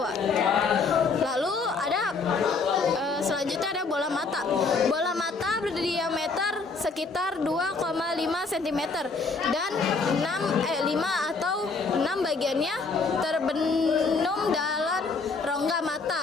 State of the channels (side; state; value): right; quieter; 4.3 dB